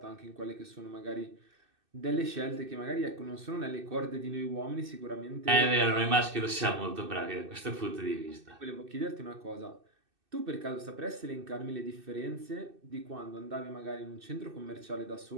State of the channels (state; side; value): late; left; 2.6 ms